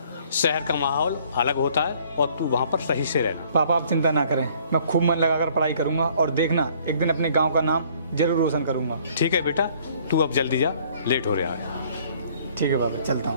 शहर का माहौल अलग होता है और तू वहाँ पर सही से रहना। पापा, आप चिंता ना करें, मैं खूब मन लगाकर पढ़ाई करूंगा और देखना, एक दिन अपने गांव का नाम जरूर रोशन करूंगा। ठीक है बेटा, तू अब जल्दी जा, लेट हो रहा है। ठीक है पापा, चलता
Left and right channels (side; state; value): both; inverted; correlation -0.59